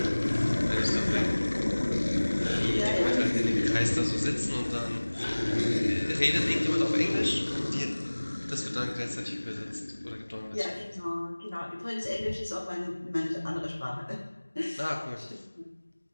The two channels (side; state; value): both; inverted; correlation -1.00